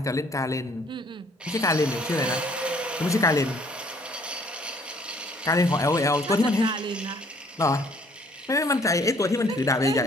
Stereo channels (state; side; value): normal; both; correlation 0.60